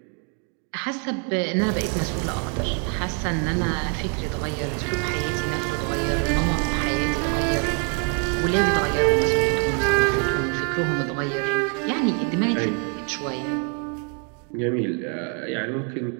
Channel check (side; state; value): left; quieter; 39.5 dB